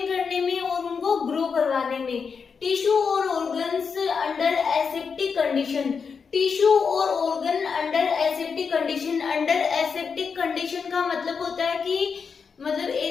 करने में और उनको ग्रो करवाने में। टिश्यू और organs under aseptic condition, tissue और organ under aseptic condition. Under aseptic condition का मतलब होता है कि मतलब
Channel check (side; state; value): right; quieter; 5.8 dB